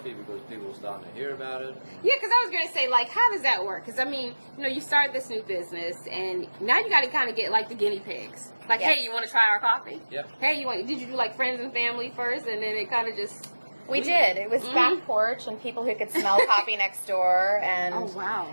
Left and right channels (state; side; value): inverted; both; correlation -1.00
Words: because people were starting to hear about it. Yeah, because I was going to say, like, how does that work? Because, I mean, you know, you started this new business, and now you got to kind of get, like, the guinea pigs. Like, hey, you want to try our coffee? Yeah. Hey, did you do, like, friends and family first, and then it kind of just... We did. It was back porch and people who could smell coffee next door. And, oh, wow.